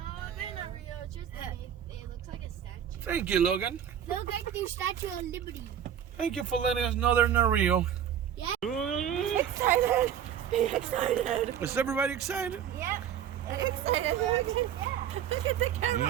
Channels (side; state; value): left; quieter; 9.4 dB